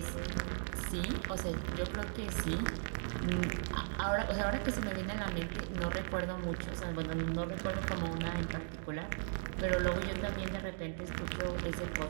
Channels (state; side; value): silent; left; digital silence